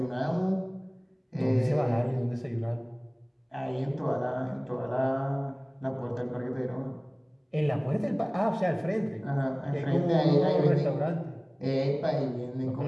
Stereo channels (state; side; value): identical; both; correlation 1.00